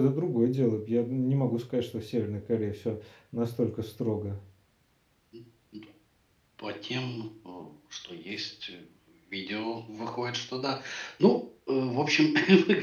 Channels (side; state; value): both; identical; correlation 1.00